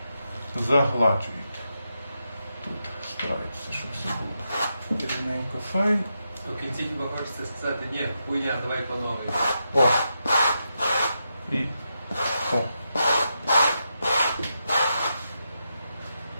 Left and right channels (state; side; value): inverted; both; correlation -0.85